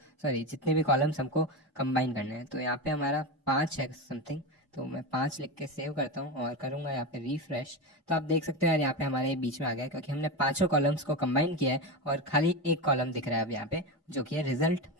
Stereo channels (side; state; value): both; normal; correlation 0.18